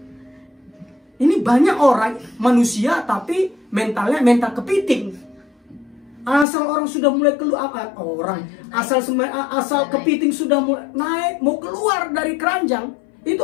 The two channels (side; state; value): right; drops out; at 6.5 s